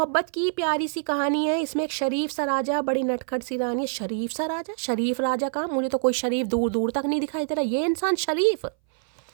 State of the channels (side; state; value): left; silent; 59 dB below the other